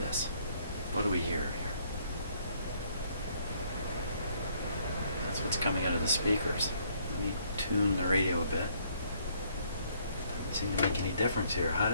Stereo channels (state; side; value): inverted; both; correlation -0.66